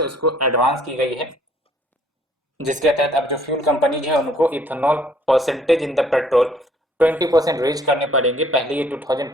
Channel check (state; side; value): normal; both; correlation 0.61